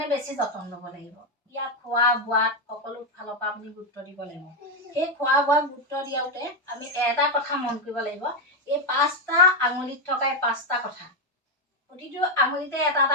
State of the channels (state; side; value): normal; both; correlation 0.06